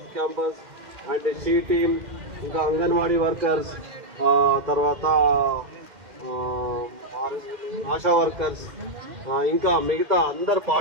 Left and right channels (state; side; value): late; left; 2.1 ms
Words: campus and she team, ఇంకా అంగన్వాడీ వర్కర్స్, తర్వాత ఆశా వర్కర్స్, ఇంకా మిగతా అందరు